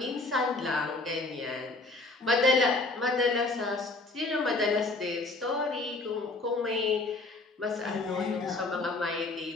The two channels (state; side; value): quieter; right; 3.3 dB